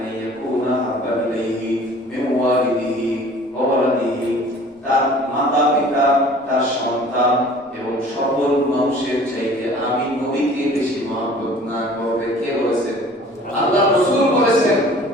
ইয়াকুনা হাব্বা ইলাইহি মিন ওয়ালিদিহি ওয়া ওয়ালাদিহি, তার মাতা পিতা, তার সন্তান এবং সকল মানুষের চাইতে আমি নবীকে বেশি মহব্বত না করবে। কে বলেছেন? আল্লাহ রাসূল বলেছেন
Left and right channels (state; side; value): normal; both; correlation 0.48